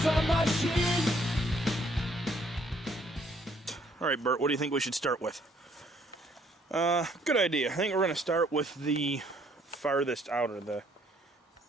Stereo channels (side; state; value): both; normal; correlation 0.65